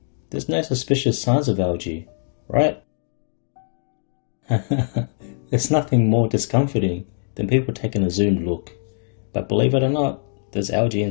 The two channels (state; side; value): silent; right; digital silence